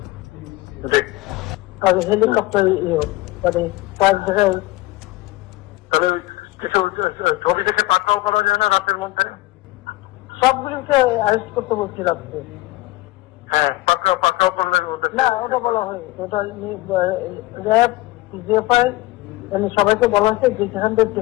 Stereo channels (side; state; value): right; quieter; 18.8 dB